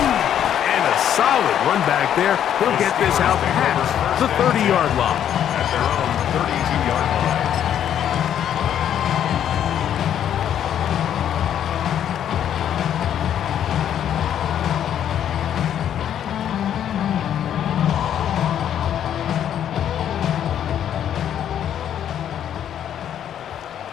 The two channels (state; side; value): quieter; right; 9.9 dB